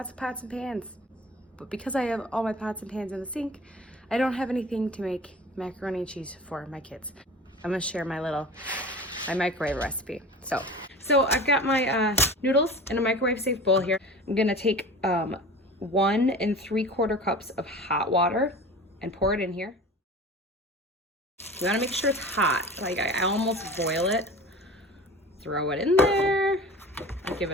of pots and pans. But because I have all my pots and pans in the sink, I don't have anything to make macaroni and cheese for my kids. I'm gonna share my microwave recipe. So I've got my noodles in a microwave safe bowl here. I'm gonna take 1 3/4 cups of hot water and pour it in here. You wanna make sure it's hot. Like I almost boil it. Throw it in there. I'll give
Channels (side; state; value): both; normal; correlation 0.38